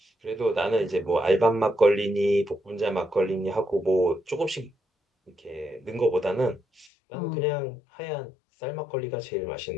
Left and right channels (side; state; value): right; drops out; at 6.9 s